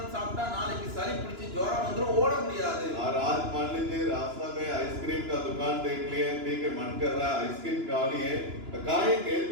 சாப்பிட்டா நாளைக்கு சளி பிடிச்சி ஜுரம் வந்துரும், ஓட முடியாது. और आज मान लीजिए रास्ता में आइसक्रीम का दुकान देख लिए, ठीक है मन कर रहा है आइसक्रीम खा लिए, खाएंगे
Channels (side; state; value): left; late; 2.9 ms